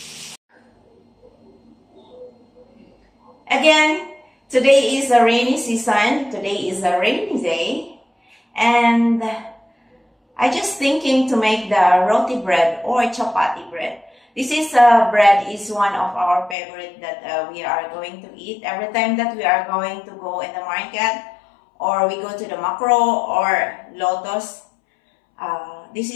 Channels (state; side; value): drops out; right; at 16.6 s